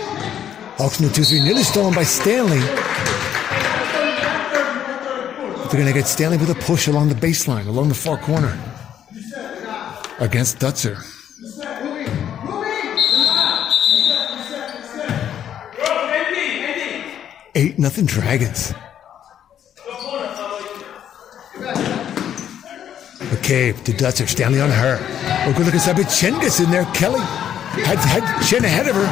Hawks in the 2-3, nearly stolen by Stanley. But they're going to get Stanley with a push along the baseline, along the far corner. Against Dutzer. 8-0 Dragons. McCabe to Dutzer. Stanley on her. Oh, good look inside, but Chen gets in there. Kelly had Chen ahead of her.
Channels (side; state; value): right; quieter; 9.9 dB